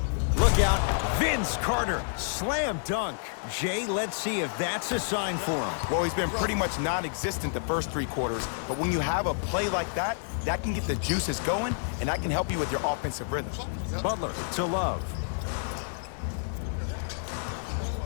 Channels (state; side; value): silent; right; digital silence